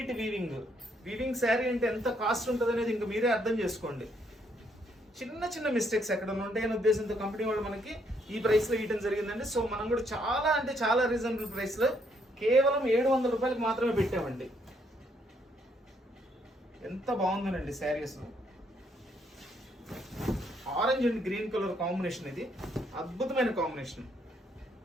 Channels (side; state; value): both; normal; correlation 0.71